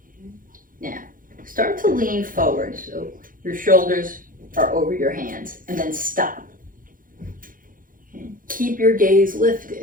Now, start to lean forward so your shoulders are over your hands, and then stop. Okay. Keep your gaze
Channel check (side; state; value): left; late; 0.40 ms